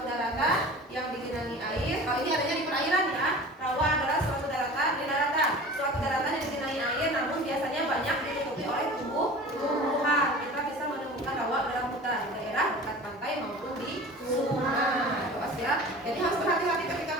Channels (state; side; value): normal; both; correlation 0.39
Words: daratan yang digenangi air. Kalau ini adanya di perairan ya. Rawa adalah suatu daratan di daratan. Suatu daratan yang digenangi air, namun biasanya banyak ditutupi oleh tumbuh-tumbuhan. Kita bisa menemukan rawa dalam hutan, daerah dekat pantai maupun di sungai. Awas ya. Jadi harus berhati-hati